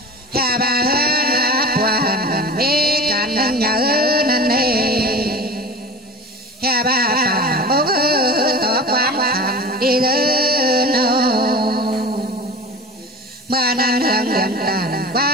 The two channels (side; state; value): both; normal; correlation 0.34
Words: hà ba hơn áp hoàn mê cạn nhớ nên nê hà ba phà bố tổ quán hành đi dư nô mà nan hương điện tàn